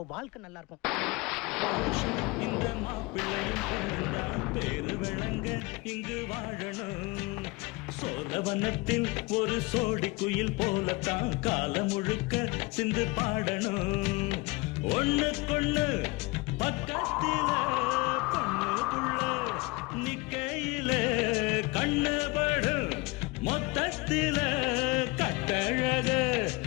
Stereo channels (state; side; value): quieter; right; 24.1 dB